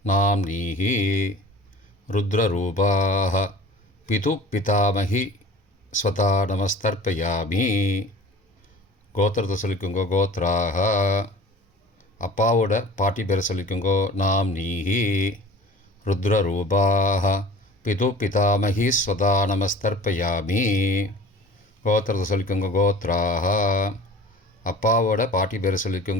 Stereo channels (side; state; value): both; normal; correlation 0.43